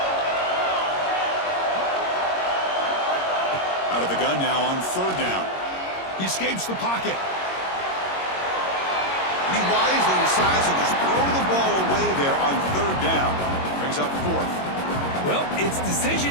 Out of the gun now on 3rd down. He escapes the pocket. And he wisely decides to just throw the ball away there on 3rd down. Brings up 4th. Well, it's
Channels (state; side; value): late; right; 22 ms